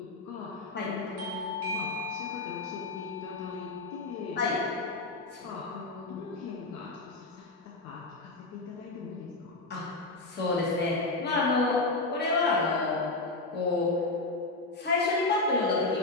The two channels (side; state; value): right; quieter; 3.2 dB